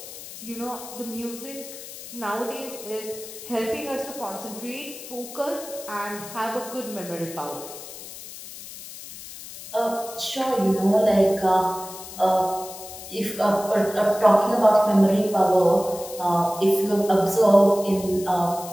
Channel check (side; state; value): left; noise; hiss, 13 dB below the sound